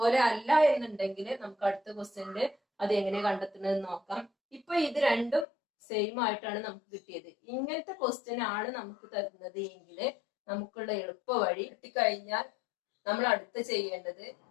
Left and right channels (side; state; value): right; drops out; at 5.5 s